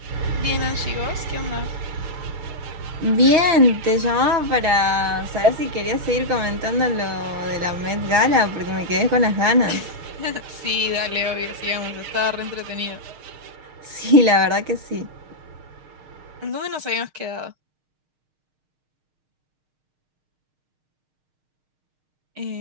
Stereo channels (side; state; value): left; late; 6.5 ms